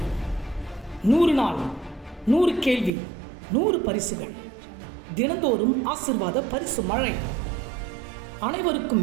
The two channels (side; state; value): left; drops out; at 2.9 s